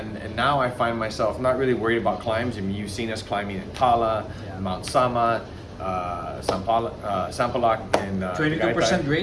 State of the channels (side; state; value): both; identical; correlation 1.00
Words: now I find myself not really worried about climbs. I mean, you've seen us climbing in Tala, Mount Sama, Sampaloc, and 22%